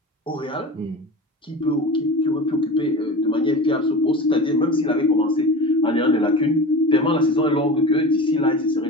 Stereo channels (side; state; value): both; normal; correlation 0.32